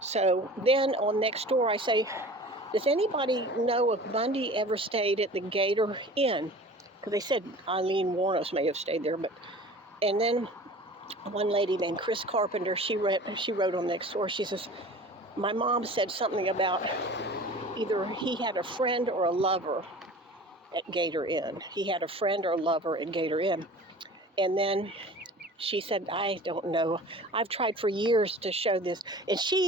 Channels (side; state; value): both; normal; correlation 0.41